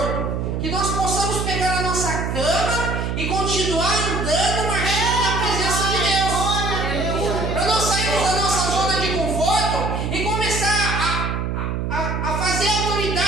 que nós possamos pegar a nossa cama e continuar andando, marchando na presença de Deus. Para nós sairmos da nossa zona de conforto e começar a fazer a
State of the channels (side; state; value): right; noise; hum, 1 dB below the sound